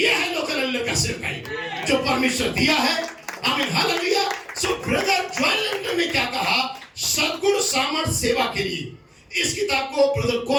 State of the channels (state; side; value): identical; both; correlation 1.00